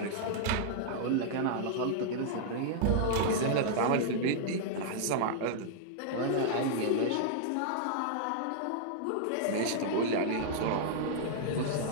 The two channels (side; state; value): both; different; correlation -0.01